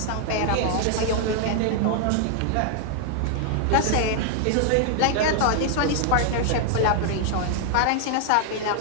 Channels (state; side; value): different; both; correlation 0.00